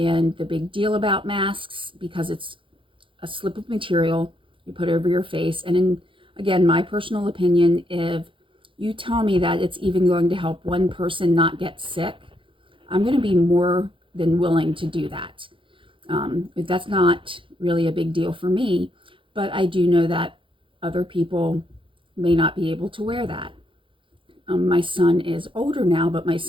the big deal about masks, because it's a slip of material you put over your face. And again, my personal opinion, if you tell me that it's even going to help one person not get sick, I'm going to be more than willing to do that. That's not really a big deal for me, but I do know that other people may not be able to wear that. My son is older now, but my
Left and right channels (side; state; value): left; late; 0.25 ms